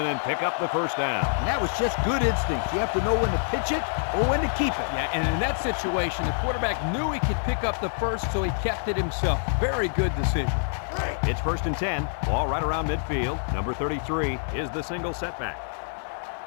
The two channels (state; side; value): silent; right; digital silence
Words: pick up the first down. And that was just good instincts. You have to know when to pitch it or when to keep it. Yeah, and in that situation, the quarterback knew he could pick up the first, so he kept it himself. Very good decision. It's 1st and 10. Ball right around midfield. Number 33 is the single setback.